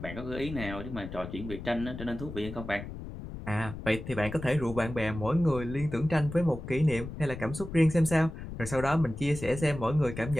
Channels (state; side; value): noise; left; rumble, 10 dB below the sound